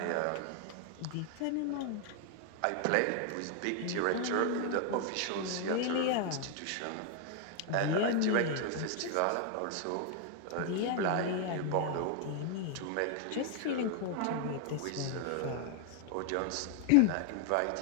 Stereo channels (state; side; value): different; both; correlation 0.00